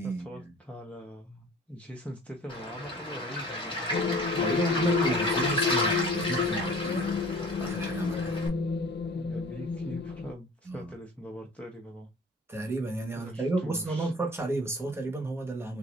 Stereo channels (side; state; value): both; normal; correlation 0.46